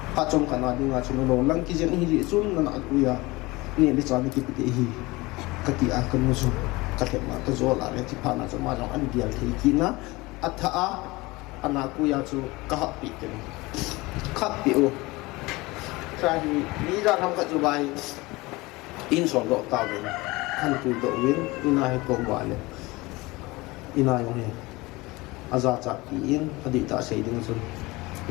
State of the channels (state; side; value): quieter; right; 22.1 dB